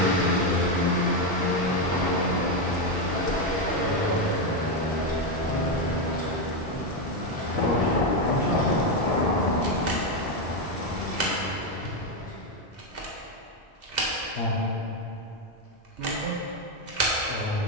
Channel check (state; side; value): normal; both; correlation 0.07